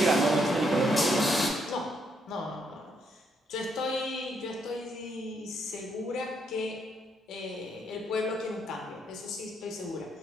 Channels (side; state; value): both; normal; correlation 0.75